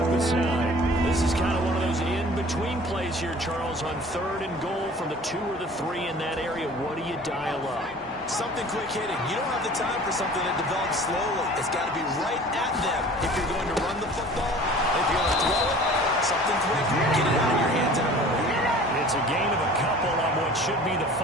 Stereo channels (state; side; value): normal; both; correlation 0.46